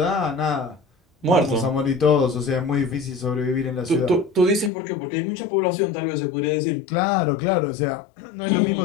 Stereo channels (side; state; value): right; drops out; at 4.7 s